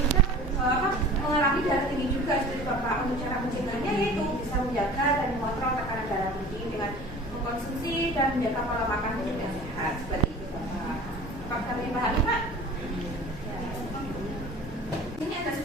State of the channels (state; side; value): normal; both; correlation 0.43